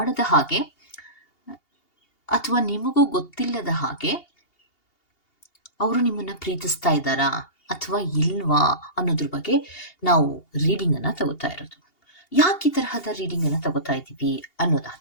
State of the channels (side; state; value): right; late; 2.8 ms